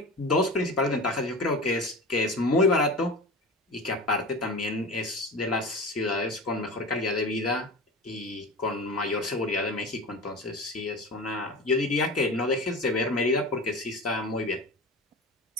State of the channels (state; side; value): normal; both; correlation 0.31